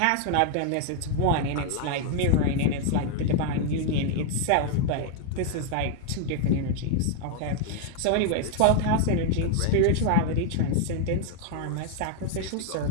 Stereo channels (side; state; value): both; different; correlation 0.00